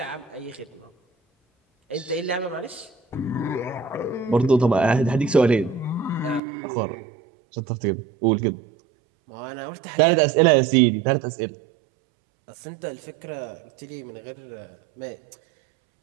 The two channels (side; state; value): left; drops out; at 6.4 s